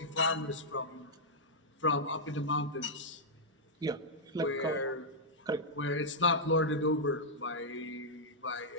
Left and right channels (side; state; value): both; normal; correlation -0.07